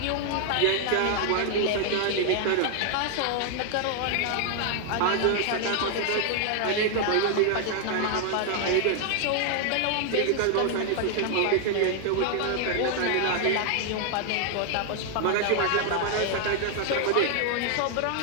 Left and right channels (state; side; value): different; both; correlation 0.00